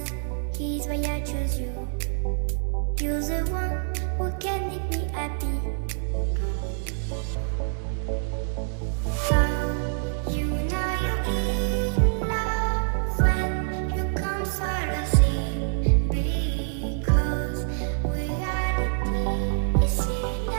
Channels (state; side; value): silent; left; digital silence